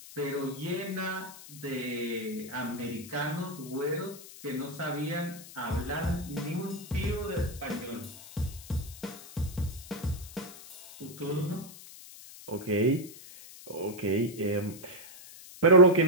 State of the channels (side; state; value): left; noise; hiss, 16 dB below the sound